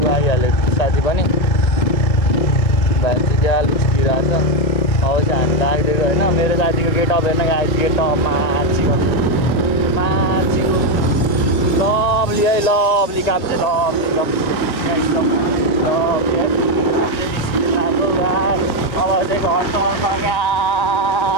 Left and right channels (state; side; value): late; right; 1.9 ms